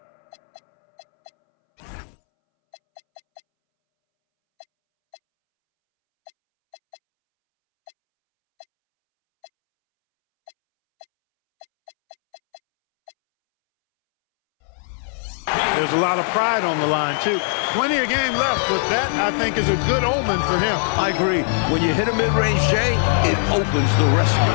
there's a lot of pride on the line, too. Plenty of game left, but that, I think, is a good omen for him. I agree. When you hit a mid-range J, it opens the rest of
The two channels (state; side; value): silent; right; 65 dB below the other